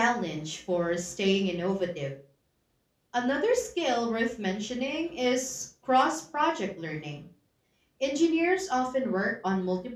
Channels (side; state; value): both; identical; correlation 1.00